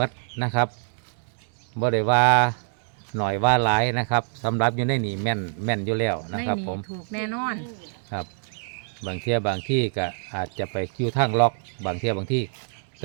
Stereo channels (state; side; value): silent; left; digital silence